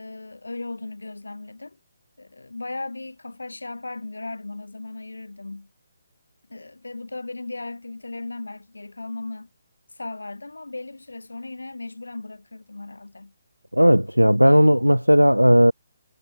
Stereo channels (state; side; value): inverted; both; correlation -1.00